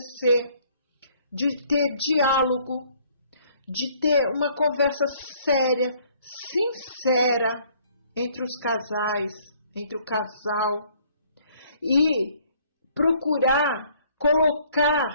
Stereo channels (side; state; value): both; inverted; correlation -0.61